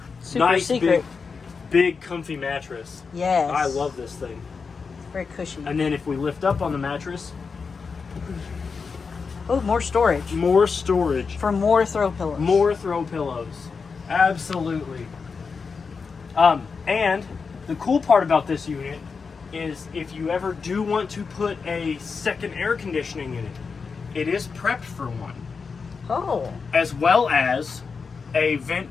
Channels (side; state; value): right; quieter; 5.1 dB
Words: Super nice, secret. Big, comfy mattress. Yes. I love this thing. Very cushy. And then if we lift up on the mattress, oh, more storage. More storage. For more throw pillows. More throw pillows. Absolutely. And the cool part about this unit is if you ever do want to put a second air conditioning in it, it is prepped for one. Oh. As well as a